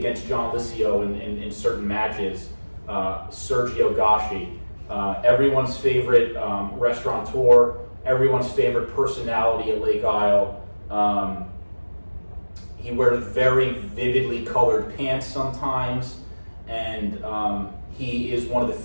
John Licio in certain matches. Sergio Gashi, everyone's favorite restaurateur, everyone's favorite personality at Lake Isle. He wears very vividly colored pants sometimes, and he is one of the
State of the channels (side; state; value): both; inverted; correlation -1.00